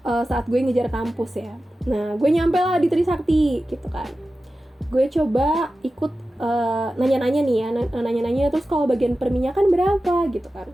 saat gue ngejar kampus ya. Nah, gue nyampe lah di Trisakti gitu kan. Gue coba ikut nanya-nanya nih ya, nanya-nanya terus kalau bagian perminyakan berapa gitu kan.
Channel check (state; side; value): normal; both; correlation 0.94